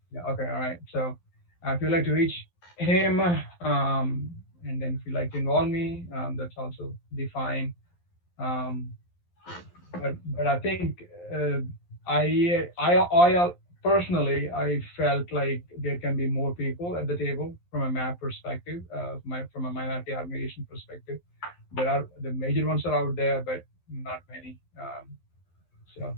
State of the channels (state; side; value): late; right; 11 ms